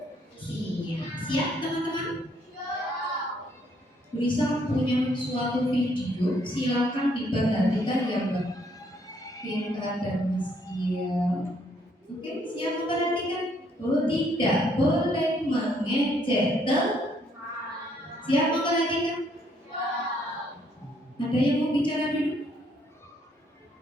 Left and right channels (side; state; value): both; normal; correlation 0.68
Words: Siap, teman-teman? Bisa punya suatu video, silakan diperhatikan ya, Mbak Vinta dan Mas Kia. Oke, siap memperhatikan? Oh, tidak boleh mengejek teman. Siap memperhatikan? Ada Ada yang mau bicara dulu?